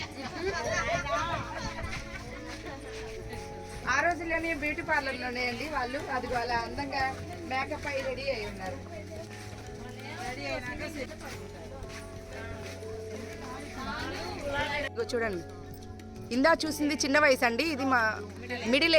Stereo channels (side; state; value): both; identical; correlation 1.00